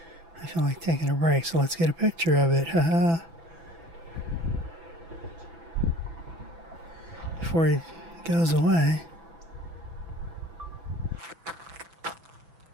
I feel like taking a break, so let's get a picture of it. Haha. Before he goes away.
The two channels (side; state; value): left; late; 6.0 ms